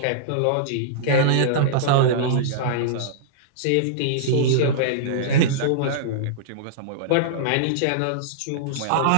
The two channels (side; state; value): both; different; correlation -0.03